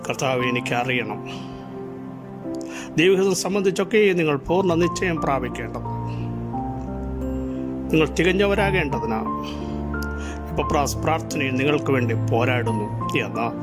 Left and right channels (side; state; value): both; identical; correlation 1.00